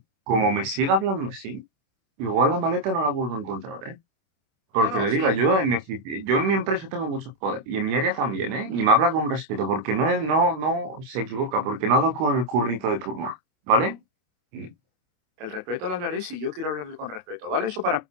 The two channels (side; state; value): left; late; 26 ms